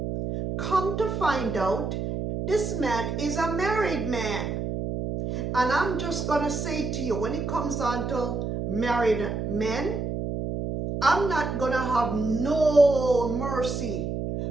Come to find out, this man is a married man. And I'm just going to say to you, when it comes on to married men, I'm not going to have no mercy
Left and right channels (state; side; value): noise; right; hum, 3 dB below the sound